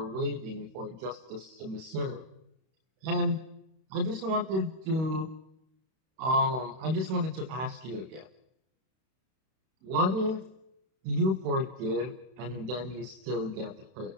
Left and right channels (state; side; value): late; left; 31 ms